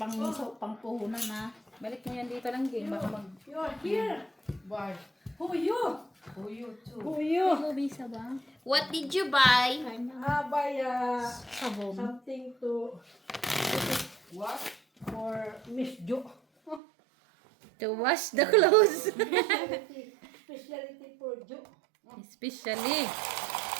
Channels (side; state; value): left; drops out; at 16.8 s